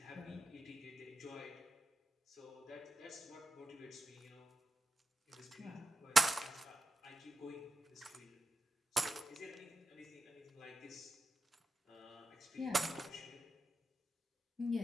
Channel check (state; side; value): normal; both; correlation 0.90